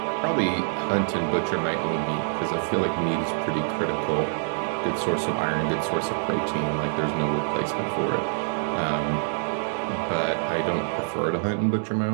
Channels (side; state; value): left; silent; digital silence